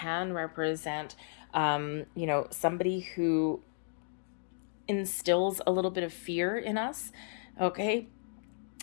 represent, somebody who instills a little bit of fear in us, okay,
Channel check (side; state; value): right; silent; digital silence